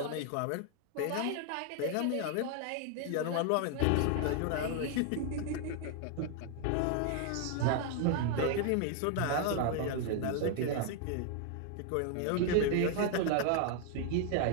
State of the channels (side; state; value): both; different; correlation 0.00